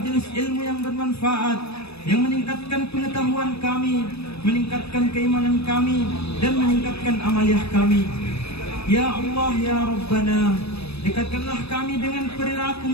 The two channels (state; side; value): late; right; 0.79 ms